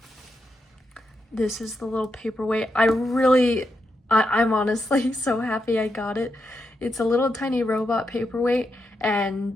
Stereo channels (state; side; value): normal; both; correlation 0.84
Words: this is the little paperweight. I'm honestly so happy I got it. It's a little tiny robot paperweight,